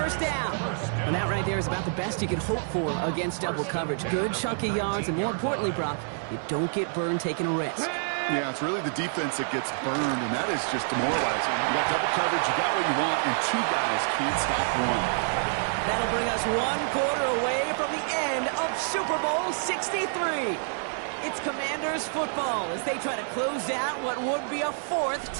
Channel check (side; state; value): left; silent; 60 dB below the other